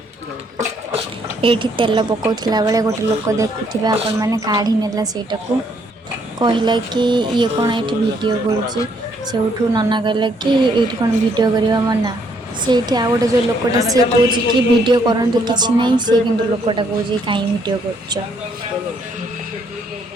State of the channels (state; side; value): normal; both; correlation 0.69